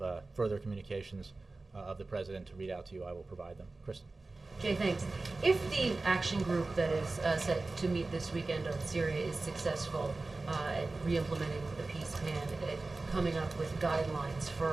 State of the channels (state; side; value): quieter; left; 3.4 dB